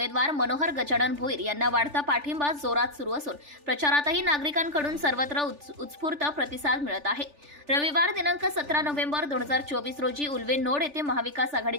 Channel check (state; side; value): late; left; 3.4 ms